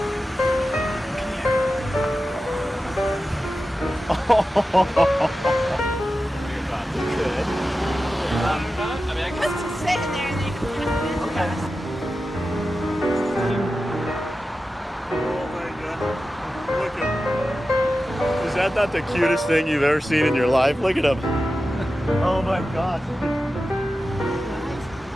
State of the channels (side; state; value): both; normal; correlation 0.93